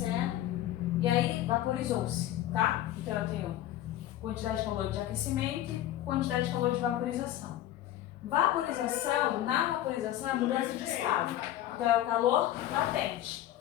e aí vaporizou-se, tá? Então eu tenho quantidade de calor de aquecimento e quantidade de calor de vaporização. Vaporização, na vaporização é mudança de estado. Então é o calor latente.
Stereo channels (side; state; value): right; quieter; 13.2 dB